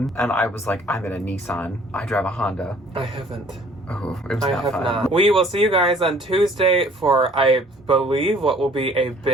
And I was like, I'm in a Nissan. I drive a Honda. I haven't. Oh, it was I not have fun. not. We will see you guys on Tuesday for, I believe, what will be a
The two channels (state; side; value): normal; both; correlation 0.56